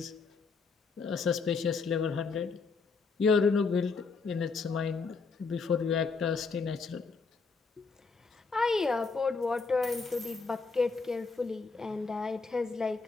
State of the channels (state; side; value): quieter; right; 4.6 dB